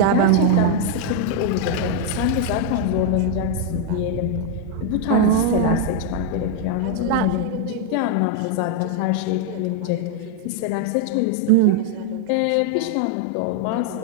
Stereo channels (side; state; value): both; different; correlation 0.00